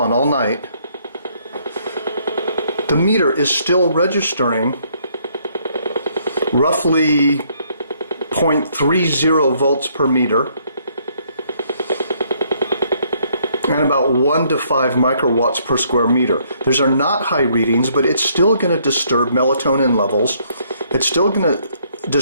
all night, the meter is still registering roughly 0.30 volts per meter and about 1 to 5 microwatts per square meter. Those are not high readings, but it's still going to disturb melatonin levels. It's still going to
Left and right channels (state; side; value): inverted; both; correlation -0.68